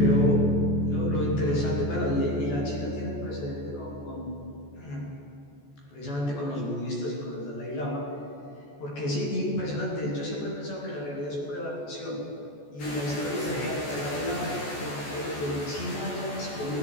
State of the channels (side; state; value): right; late; 14 ms